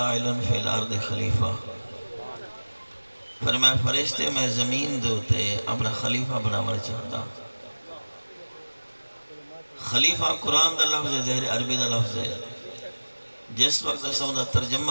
فی الارض خلیفہ فرمائے فرشتے میں زمین دوتے اپنا خلیفہ بناور چاہتا خلیفہ قرآن دا لفظ ہے زہر عربی دا لفظ ہے جس وقت سمدہ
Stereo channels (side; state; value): both; inverted; correlation -1.00